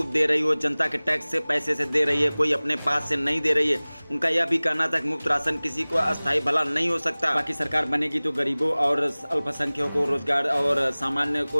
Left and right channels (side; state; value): both; inverted; correlation -1.00